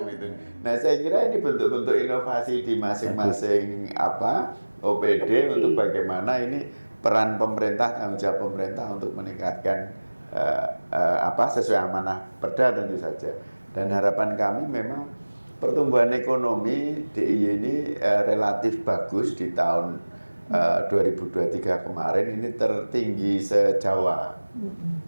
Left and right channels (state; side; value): inverted; both; correlation -1.00